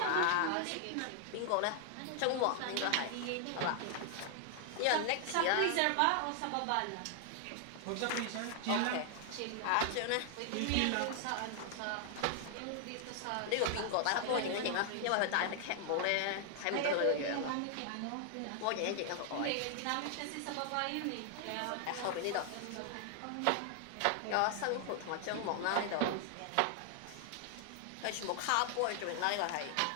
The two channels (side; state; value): both; different; correlation 0.00